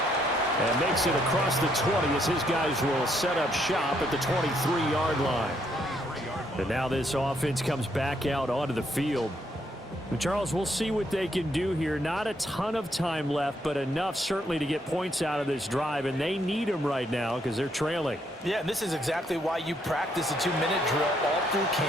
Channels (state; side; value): normal; both; correlation 0.73